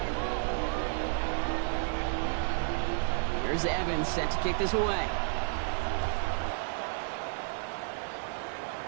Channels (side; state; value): left; silent; digital silence